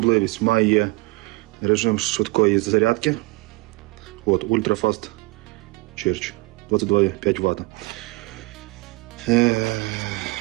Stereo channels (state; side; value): quieter; left; 24.1 dB